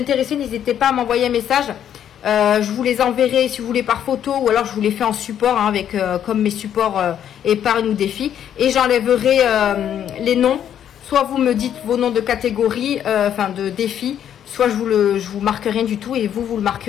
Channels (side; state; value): right; quieter; 9.8 dB